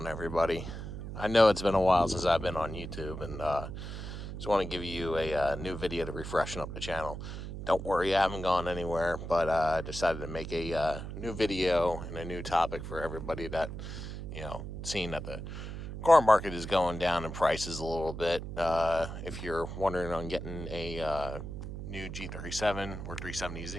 everybody? I know it's been a while since I've been on YouTube, and just want to give you a new video to refreshen up the channel. Don't worry, I haven't gone anywhere, but I decided to make a new video and a new topic for everybody that, seeing that the car market is going down in prices a little bit. If you're wondering on getting a new G37 or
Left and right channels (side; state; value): right; noise; hum, 8 dB below the sound